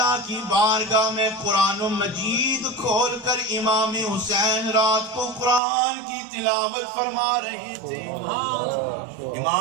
کی بارگاہ میں قرآن مجید کھول کر امام حسین رات کو قرآن کی تلاوت فرما رہے تھے.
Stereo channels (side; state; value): left; drops out; at 5.6 s